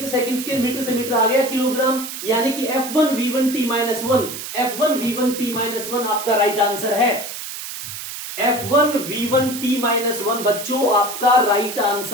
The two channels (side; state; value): right; noise; hiss, 8 dB below the sound